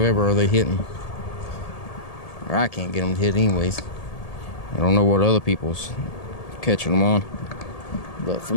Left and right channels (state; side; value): late; right; 1.8 ms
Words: are they hitting. Or I can't get them to hit anyways. I don't know what other people's catching them on. But for